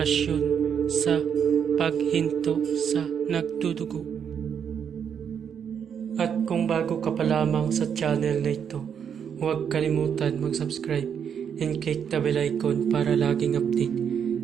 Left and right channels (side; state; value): left; quieter; 7.8 dB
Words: sa paghinto sa nagdudugo. At kung bago ka pa lamang sa channel na ito, huwag kalimutan mag-subscribe and click the bell icon para laging update